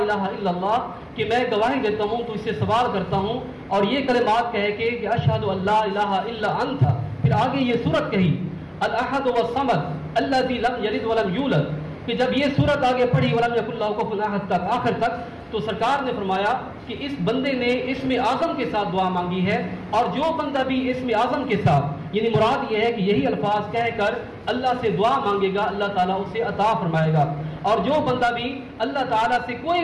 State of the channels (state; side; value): identical; both; correlation 1.00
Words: इल्लल्लाह, कि मैं गवाही देता हूँ, तो इससे सवाल करता हूँ और ये कलिमात कह के कि अशहदु अल्ला इलाहा इल्ला अंता। फिर आगे ये सूरत कही अल अहद व समद अल्लज़ी लम यलिद व लम यूलद, कि जब ये सूरत आगे पढ़ी वलम यकुल लहू कुफुवन अहद तक आखिर तक, तो सरकार ने फरमाया कि इस बंदे ने इस्म आज़म के साथ दुआ मांगी है, और जो बंदा भी इस्म आज़म के साथ, यानी मुराद ये है कि यही अल्फाज कहकर अल्लाह से दुआ मांगेगा, अल्लाह ताला उसे अता फरमाएगा। और जो बंदा भी अल्लाह ताला से कोई